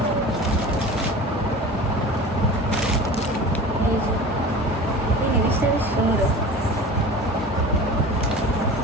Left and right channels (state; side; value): normal; both; correlation 0.37